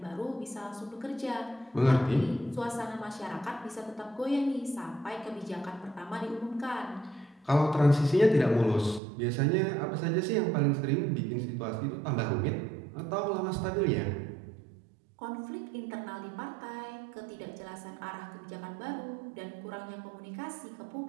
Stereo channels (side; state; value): left; drops out; at 9.0 s